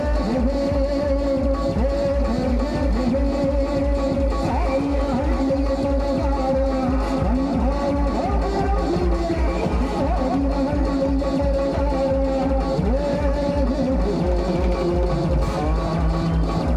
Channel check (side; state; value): both; identical; correlation 1.00